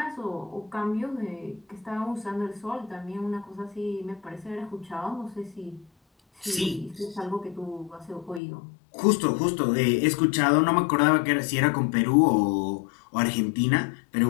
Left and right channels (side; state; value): right; drops out; at 8.4 s